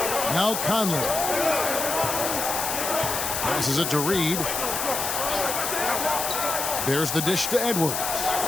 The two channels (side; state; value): left; noise; hiss, 2 dB below the sound